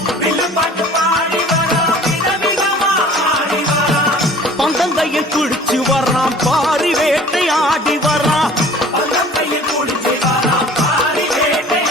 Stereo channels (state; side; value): normal; both; correlation 0.47